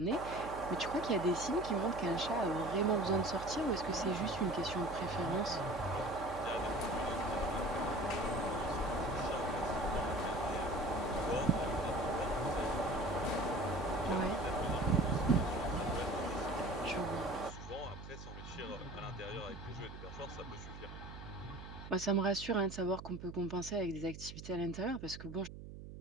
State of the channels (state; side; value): noise; right; hum, 12 dB below the sound